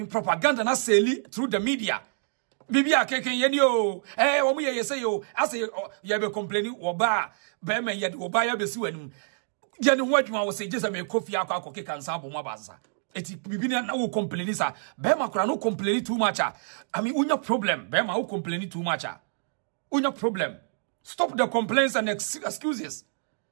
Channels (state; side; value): silent; left; digital silence